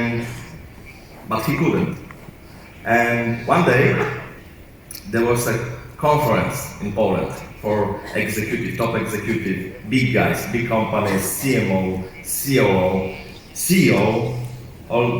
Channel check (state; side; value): identical; both; correlation 1.00